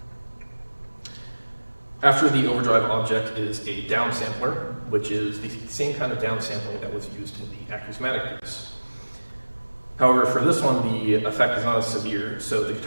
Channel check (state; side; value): inverted; both; correlation -1.00